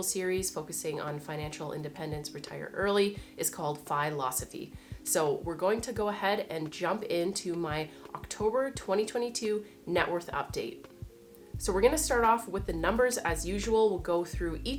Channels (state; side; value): identical; both; correlation 1.00